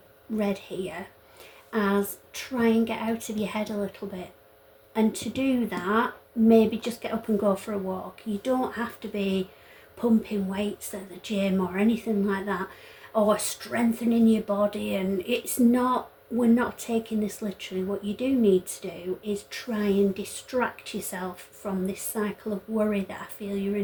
read here, as try and get out of your head a little bit. And to do that, maybe just get up and go for a walk. You don't have to be pumping weights at the gym or anything like that, or strengthening your body. And it's not, we're not taking this literally. What you do need to do is try and distract yourself from this cycle of worry that I feel you're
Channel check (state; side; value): identical; both; correlation 1.00